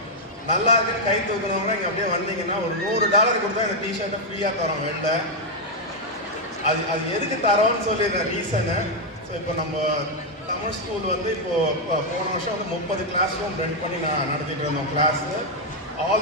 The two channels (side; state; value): both; normal; correlation 0.00